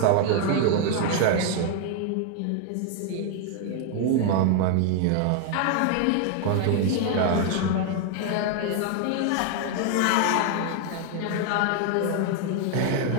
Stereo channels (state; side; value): different; both; correlation 0.00